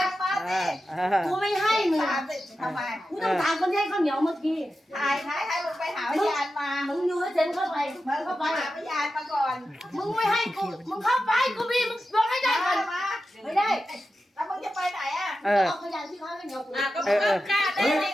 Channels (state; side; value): normal; both; correlation 0.91